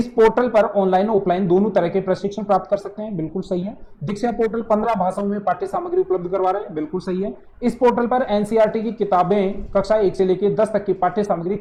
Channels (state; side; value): identical; both; correlation 1.00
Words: पोर्टल पर ऑनलाइन और ऑफलाइन दोनों तरह के प्रशिक्षण प्राप्त कर सकते हैं, बिल्कुल सही है। दीक्षा पोर्टल 15 भाषाओं में पाठ्य सामग्री उपलब्ध करवा रहे हैं, बिल्कुल सही है। इस पोर्टल पर एनसीईआरटी की किताबें कक्षा 1 से लेकर 10 तक की पाठ्य सामग्री